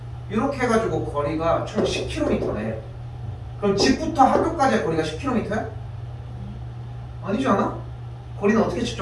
이렇게 해가지고 거리가 총 10km네. 그럼 집부터 학교까지의 거리가 10km야? 아니지 않아? 거리는 어떻게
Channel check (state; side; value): identical; both; correlation 1.00